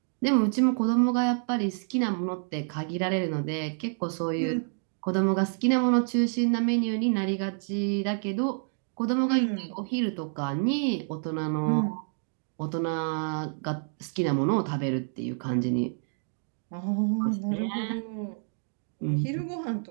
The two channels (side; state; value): left; silent; 59 dB below the other